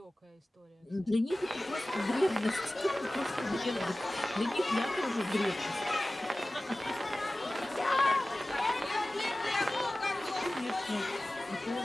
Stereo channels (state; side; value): normal; both; correlation 0.97